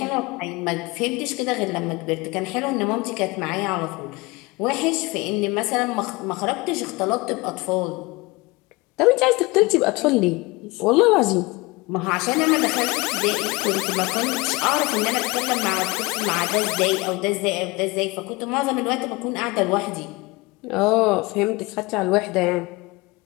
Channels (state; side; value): quieter; right; 24.1 dB